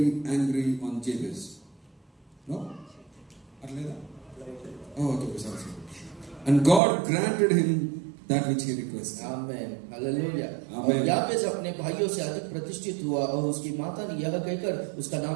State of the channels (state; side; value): drops out; left; at 6.8 s